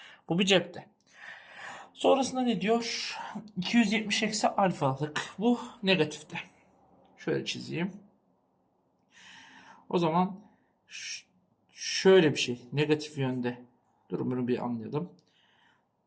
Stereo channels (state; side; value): identical; both; correlation 1.00